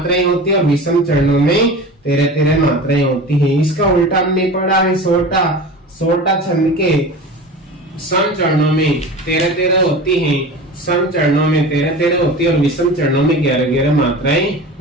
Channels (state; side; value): normal; both; correlation 0.33